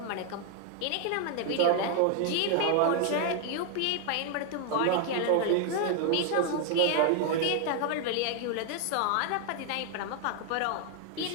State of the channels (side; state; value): both; different; correlation 0.00